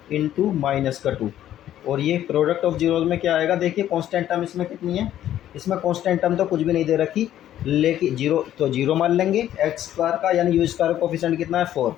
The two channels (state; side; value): quieter; right; 11.9 dB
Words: इंटू -2, और ये प्रोडक्ट ऑफ जीरोज़ में क्या आएगा, देखिए कांस्टेंट टर्म इसमें कितनी है, इसमें कांस्टेंट टर्म तो कुछ भी नहीं दे रखी, लेकिन 0 तो 0 मान लेंगे, x स्क्वायर का यानी u स्क्वायर का कोफिशिएंट कितना है 4।